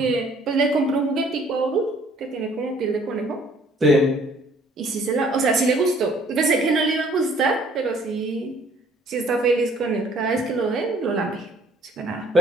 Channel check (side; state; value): both; normal; correlation 0.58